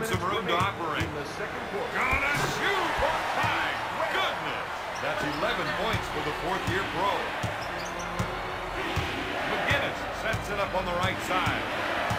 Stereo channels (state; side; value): identical; both; correlation 1.00